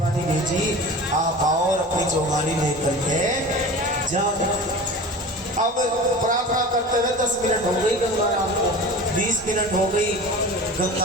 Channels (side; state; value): both; normal; correlation 0.36